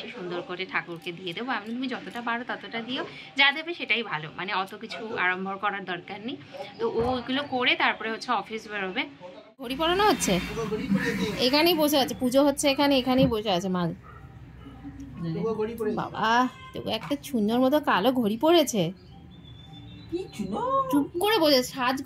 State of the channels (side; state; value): both; identical; correlation 1.00